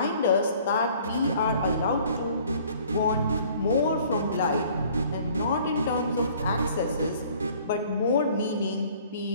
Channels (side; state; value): both; inverted; correlation -0.55